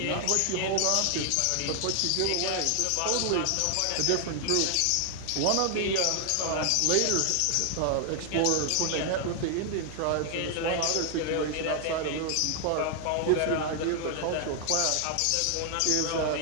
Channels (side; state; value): both; different; correlation 0.00